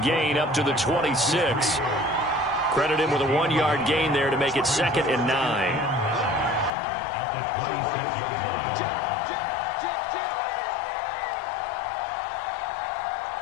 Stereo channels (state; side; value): drops out; right; at 6.7 s